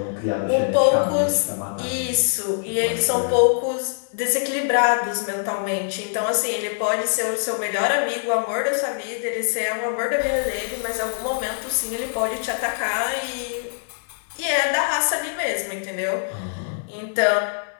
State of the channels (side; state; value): right; silent; digital silence